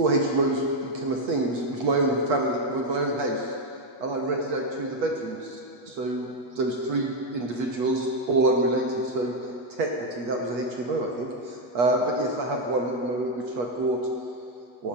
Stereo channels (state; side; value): late; left; 8.3 ms